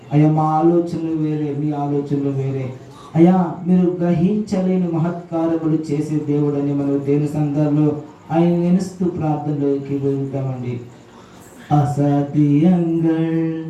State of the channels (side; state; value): both; identical; correlation 1.00